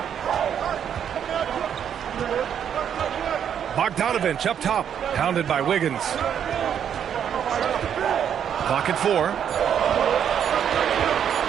Bogdanovich up top, pounded by Wiggins. Clock at 4.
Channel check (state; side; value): quieter; left; 8.7 dB